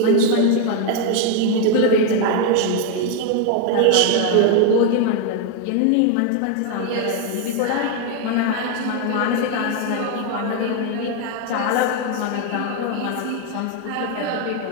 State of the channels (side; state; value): both; different; correlation 0.01